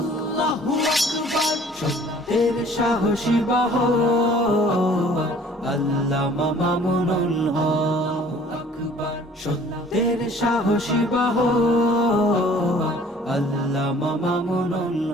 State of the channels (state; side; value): normal; both; correlation 0.53